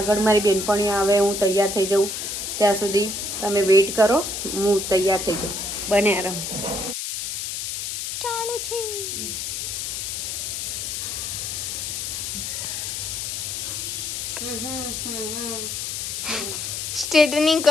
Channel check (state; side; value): noise; left; hiss, 4 dB below the sound